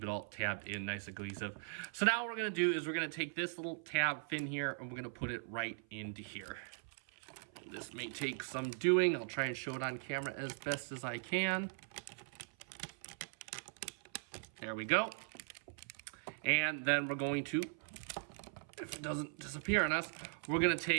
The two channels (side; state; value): left; silent; 51 dB below the other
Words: it all tabbed in nice and cohesive. So now what we're going to do is we're going to take this little tab fin here, and we're going to put it right into here. This may take some doing. I'll try and show it on camera as best as I can. There we go. And then we're going to, if it doesn't disappear on us, we're going to